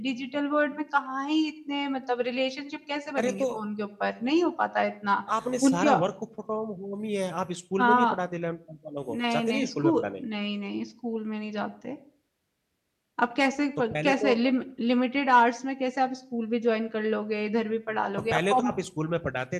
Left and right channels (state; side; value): identical; both; correlation 1.00